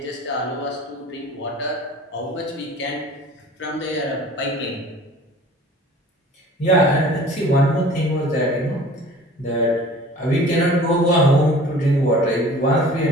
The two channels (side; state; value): both; normal; correlation 0.46